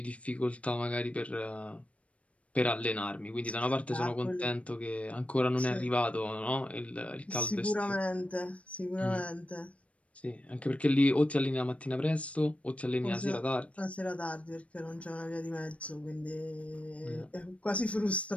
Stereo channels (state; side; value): late; right; 0.064 ms